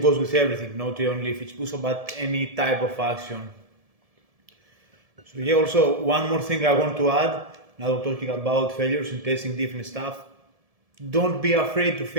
with everything, not only if it's push-up, but any type of action. So yeah, also one more thing I want to add, now we're talking about failures and testing different stuff. Don't be afraid to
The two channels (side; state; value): left; late; 1.7 ms